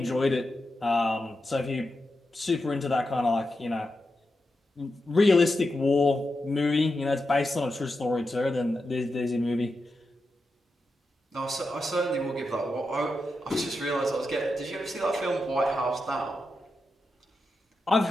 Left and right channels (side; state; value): both; normal; correlation 0.88